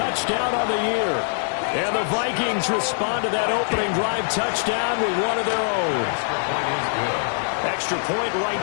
on the year. And the Vikings respond to that opening drive touchdown with one of their own. Extra point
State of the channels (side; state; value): right; silent; digital silence